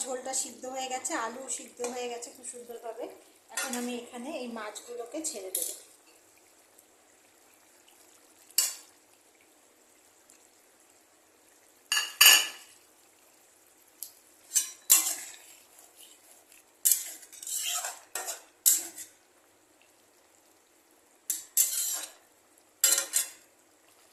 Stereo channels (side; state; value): both; identical; correlation 1.00